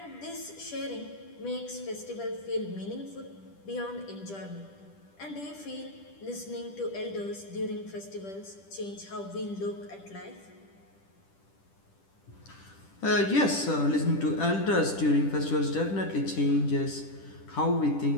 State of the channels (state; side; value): late; right; 10 ms